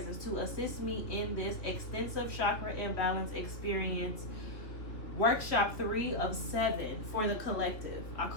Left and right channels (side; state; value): right; late; 2.8 ms